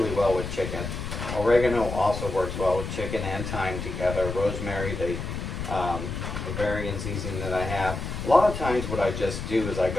well with chicken. Oregano also works well with chicken and thyme together. Rosemary, they the variant seasoning that I have. A lot of times what I just do is I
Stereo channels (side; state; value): left; noise; rumble, 5 dB below the sound